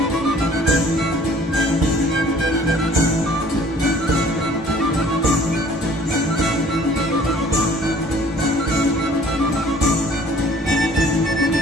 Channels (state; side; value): normal; both; correlation 0.53